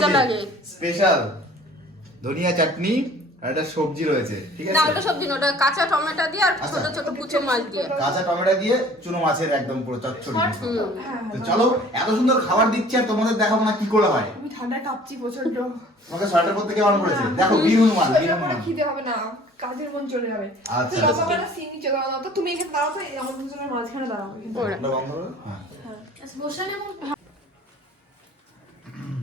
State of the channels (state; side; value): normal; both; correlation 0.50